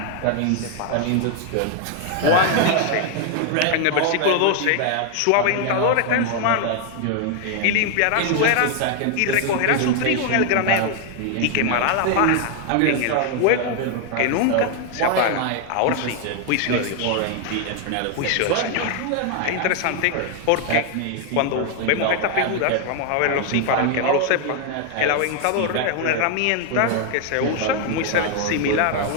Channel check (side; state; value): both; different; correlation 0.00